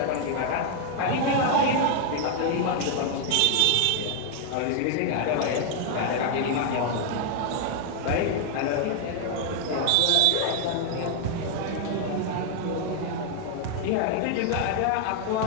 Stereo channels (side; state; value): both; different; correlation 0.00